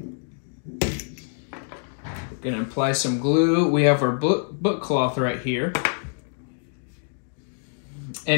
We're gonna apply some glue. We have our book cloth right here.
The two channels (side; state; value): right; silent; 62 dB below the other